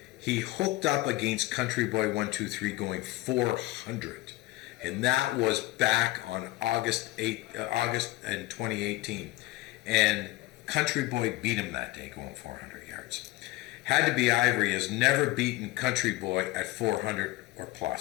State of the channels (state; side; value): quieter; right; 18.9 dB